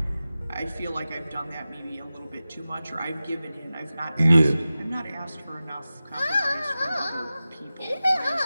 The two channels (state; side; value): inverted; both; correlation -0.95